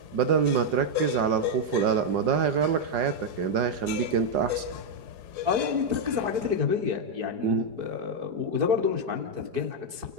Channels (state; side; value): late; left; 4.9 ms